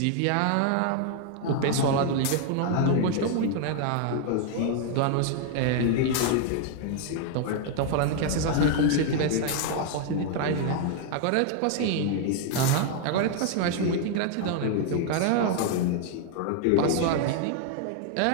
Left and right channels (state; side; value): different; both; correlation 0.00